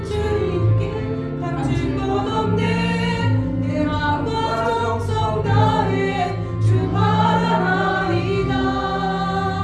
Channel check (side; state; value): both; identical; correlation 1.00